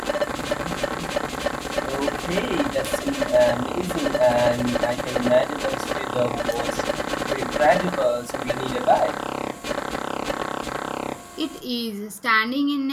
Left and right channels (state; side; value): identical; both; correlation 1.00